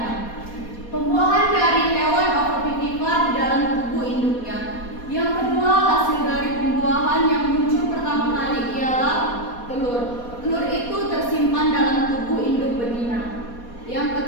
Pembuahan dari hewan ovovivipar di dalam tubuh induknya. Yang kedua, hasil dari pembuahan yang muncul pertama kali ialah telur. Telur itu tersimpan dalam tubuh induk betina. Yang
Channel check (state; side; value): late; right; 4.2 ms